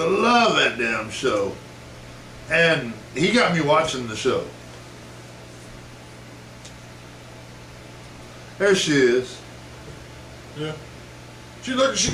love that damn show. And he got me watching the show. There she is. Yeah. She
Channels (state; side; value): identical; both; correlation 1.00